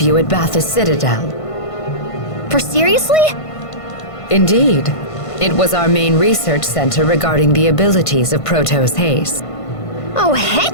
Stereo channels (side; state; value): right; late; 1.5 ms